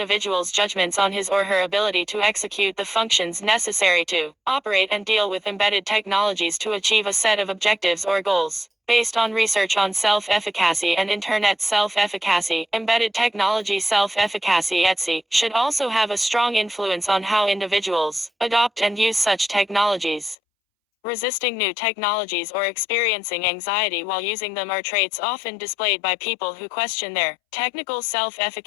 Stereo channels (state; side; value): drops out; right; at 20.4 s